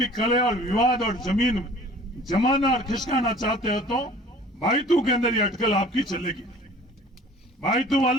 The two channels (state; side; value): normal; both; correlation 0.48